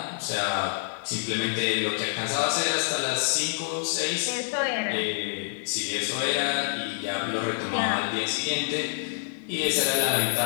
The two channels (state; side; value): silent; right; digital silence